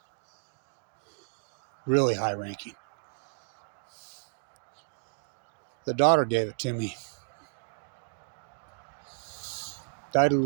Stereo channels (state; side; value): silent; left; digital silence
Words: Really high-ranking. The daughter gave it to me. Died of